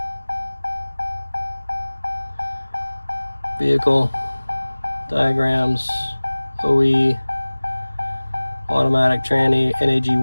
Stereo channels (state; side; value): inverted; both; correlation -1.00